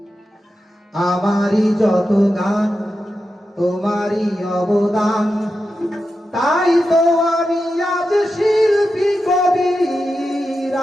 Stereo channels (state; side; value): normal; both; correlation 0.89